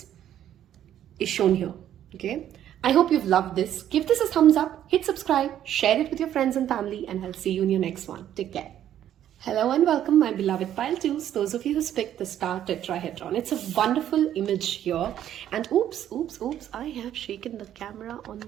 is shown here. Okay, I hope you've loved this. Give this a thumbs up, hit subscribe, share it with your friends and family, and I'll see you in your next one. Take care. Hello and welcome, my beloved pile 2s, those of you who picked the star tetrahedron. It's a wonderful image here, and oops, I have shaken the camera on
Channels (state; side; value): quieter; left; 11.0 dB